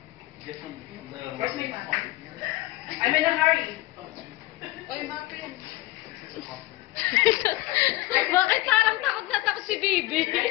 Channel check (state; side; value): quieter; right; 18.9 dB